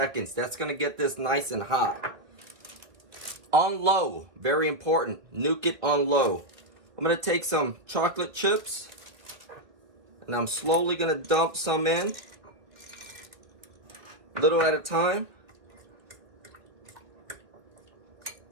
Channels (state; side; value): late; left; 2.1 ms